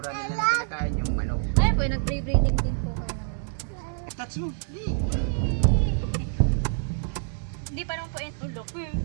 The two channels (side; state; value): left; silent; digital silence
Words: nila na kinakain yung manok. Ay, po, nag-pre-breeding din po kayo naman. Touch mo. Hindi pa naman po yan. Laki.